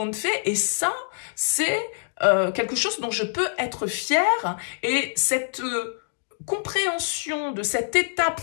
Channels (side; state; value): right; silent; digital silence